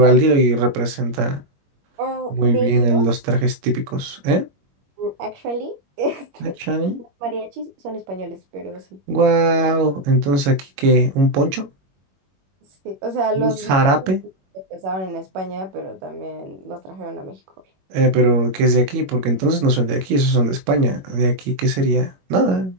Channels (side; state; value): left; late; 21 ms